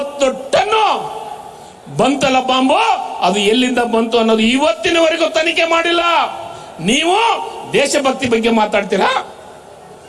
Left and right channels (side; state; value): both; identical; correlation 1.00